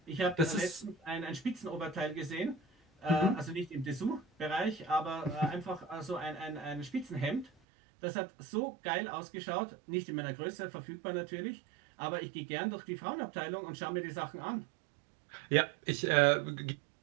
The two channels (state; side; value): drops out; left; at 7.5 s